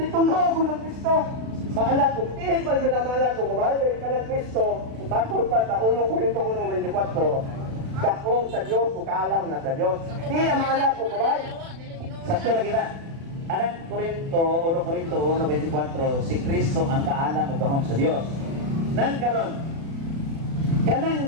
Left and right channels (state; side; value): late; left; 36 ms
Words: ko ng Kristo. Maalat ko, tihin pa siya na maalat ko, kumahal ka ng Kristo, matol pa sa 1 Corinto 1:24, dakong sa Diyos, kaalam na sa Diyos. Di ang maalat ko, kumahal. Sakto lagi na. Anang Corinto 1:24, si Kristo ang kaalam o gahom sa Dios. Nan karon,